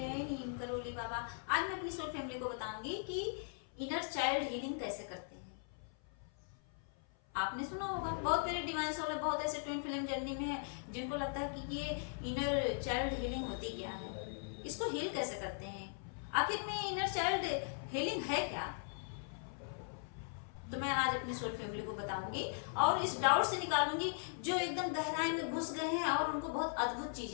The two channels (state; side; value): silent; right; 52 dB below the other